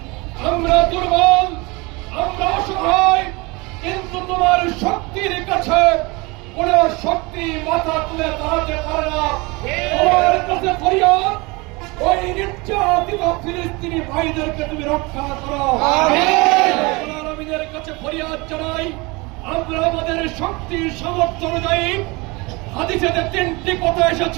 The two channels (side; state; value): left; quieter; 25.6 dB